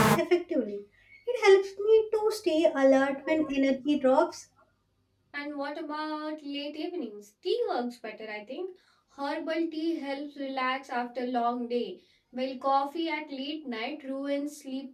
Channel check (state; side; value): identical; both; correlation 1.00